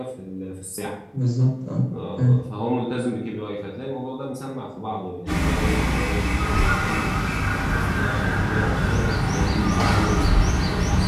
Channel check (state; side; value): identical; both; correlation 1.00